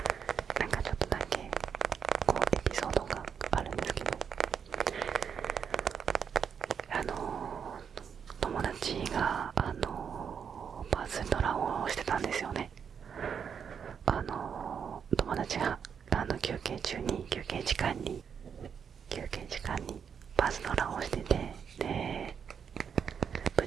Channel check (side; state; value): left; quieter; 7.2 dB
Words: ちょっとだけエピソードがあるんですけど、友達がバズドラをしてたんですよね。友達が休憩時間にバズドラをしてて、でぶっ